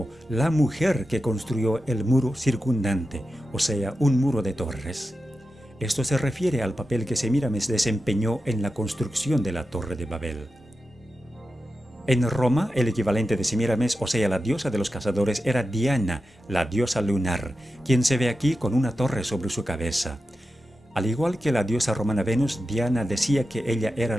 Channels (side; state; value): both; normal; correlation 0.91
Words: la mujer que construyó el muro circundante, o sea, un muro de torres. Esto se refiere al papel que Semíramis desempeñó en la construcción de la Torre de Babel. En Roma, el equivalente de Semíramis, o sea, la diosa de los cazadores, era Diana, la diosa lunar, quien se ve aquí con una torre sobre su cabeza. Al igual que la diosa romana Venus, Diana decía que ella era